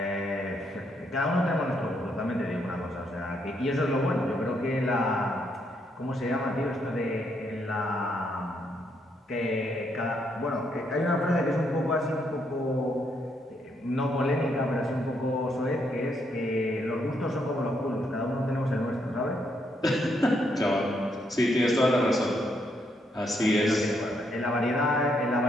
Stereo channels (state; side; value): normal; both; correlation 0.75